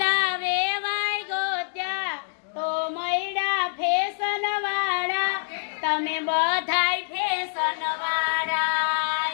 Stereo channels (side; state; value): right; silent; digital silence